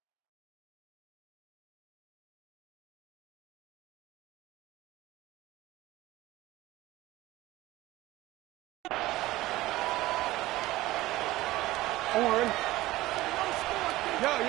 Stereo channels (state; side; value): quieter; left; 17.6 dB